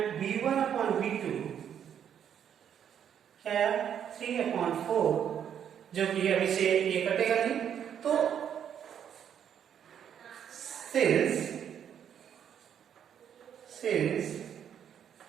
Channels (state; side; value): quieter; left; 8.9 dB